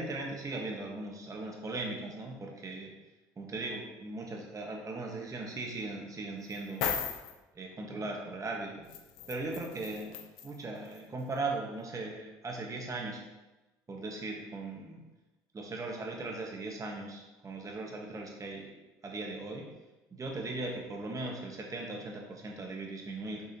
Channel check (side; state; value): both; normal; correlation 0.46